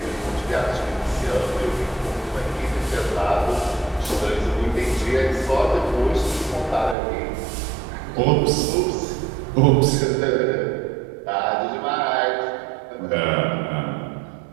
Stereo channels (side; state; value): left; drops out; at 7.0 s